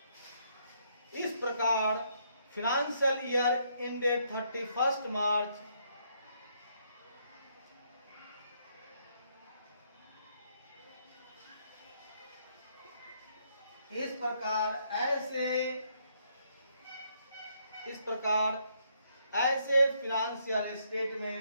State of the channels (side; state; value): both; inverted; correlation -0.72